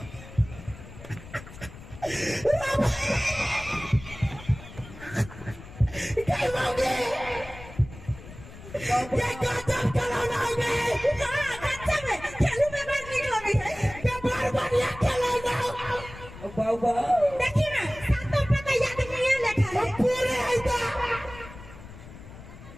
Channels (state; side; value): noise; left; rumble, 16 dB below the sound